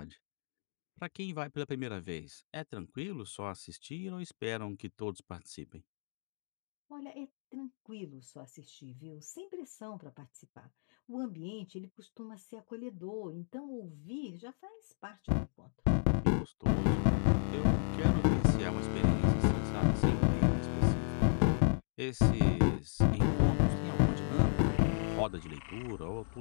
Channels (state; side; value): silent; right; digital silence